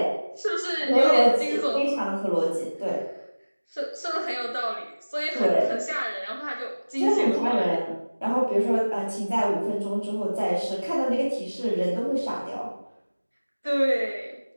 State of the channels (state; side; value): inverted; both; correlation -1.00